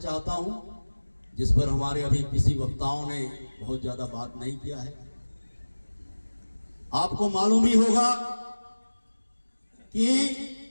हूं जिस पर हमारे अभी किसी वक्ताओं ने बहुत ज्यादा बात नहीं किया है। आपको मालूम ही होगा कि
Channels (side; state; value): both; inverted; correlation -1.00